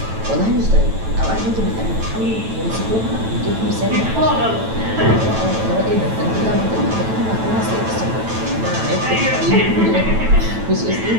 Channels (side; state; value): left; late; 9.1 ms